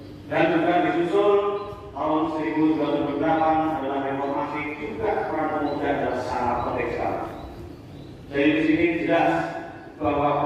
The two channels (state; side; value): identical; both; correlation 1.00